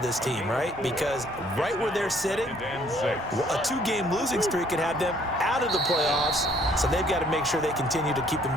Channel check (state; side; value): normal; both; correlation 0.62